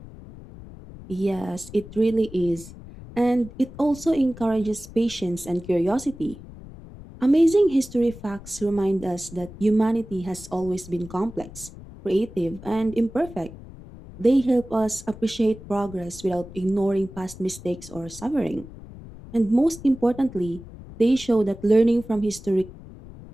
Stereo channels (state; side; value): noise; left; rumble, 16 dB below the sound